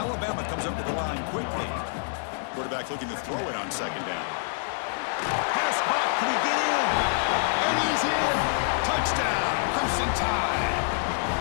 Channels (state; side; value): silent; right; digital silence